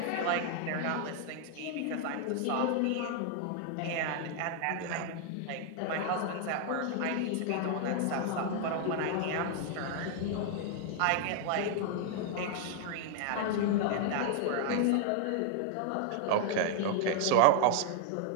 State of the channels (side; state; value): both; different; correlation 0.00